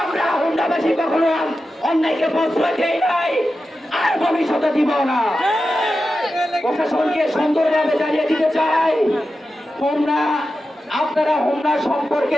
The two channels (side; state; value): both; normal; correlation 0.91